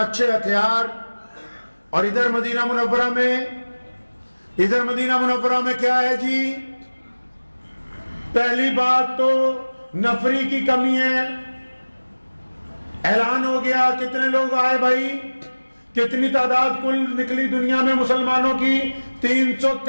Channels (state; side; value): inverted; both; correlation -1.00